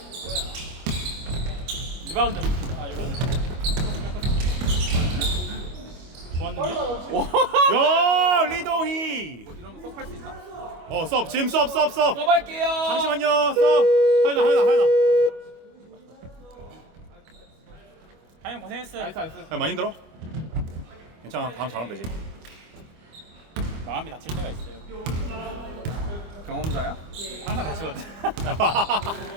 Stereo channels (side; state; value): left; late; 25 ms